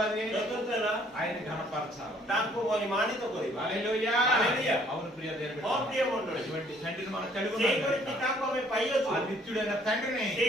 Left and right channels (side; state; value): both; normal; correlation 0.61